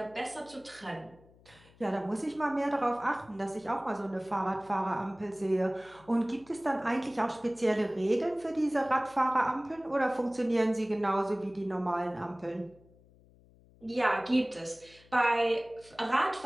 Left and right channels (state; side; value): noise; left; hum, 27 dB below the sound